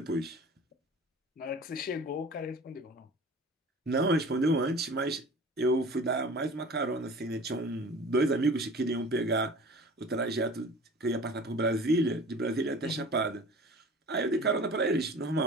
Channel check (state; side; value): normal; both; correlation 0.41